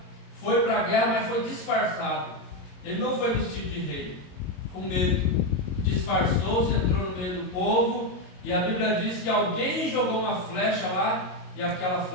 foi para a guerra, mas foi disfarçado. Ele não foi vestido de rei, com medo, disfarçou-se, entrou no meio do povo, e a Bíblia diz que alguém jogou uma flecha lá, e aquela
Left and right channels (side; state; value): right; late; 22 ms